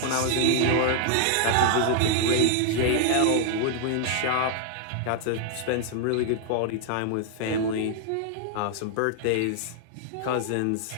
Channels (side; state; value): both; different; correlation 0.00